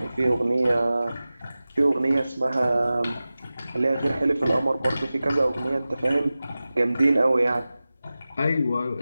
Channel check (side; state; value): both; inverted; correlation -0.96